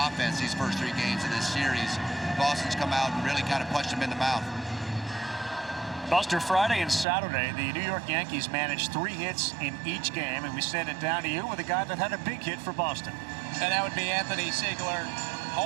these first 3 games of this series. Boston's come out and really kind of punched them in the mouth. Buster, Friday and Saturday, the New York Yankees managed 3 hits in each game, and we send it down to you with a guy that had a big hit for Boston. And that would be Anthony Siegler.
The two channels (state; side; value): drops out; left; at 7.1 s